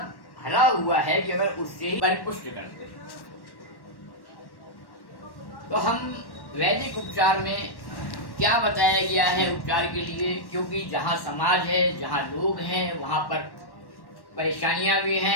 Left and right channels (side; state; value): right; late; 1.1 ms